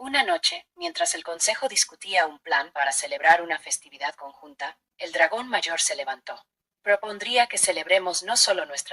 noche, mientras el consejo discutía un plan para celebrar una festividad conjunta, el dragón mayor se levantó. Propondría que celebremos no solo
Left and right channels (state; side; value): identical; both; correlation 1.00